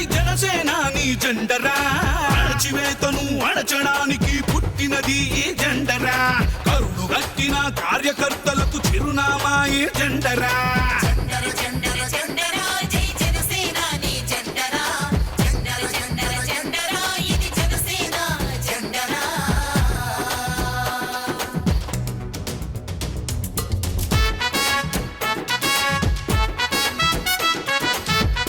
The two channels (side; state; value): both; identical; correlation 1.00